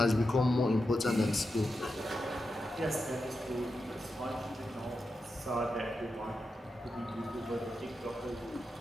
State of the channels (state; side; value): normal; both; correlation 0.88